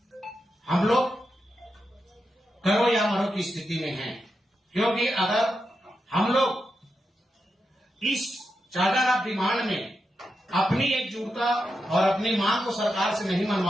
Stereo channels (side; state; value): both; normal; correlation 0.87